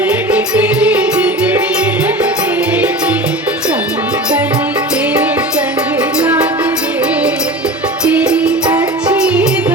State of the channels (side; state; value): both; normal; correlation 0.32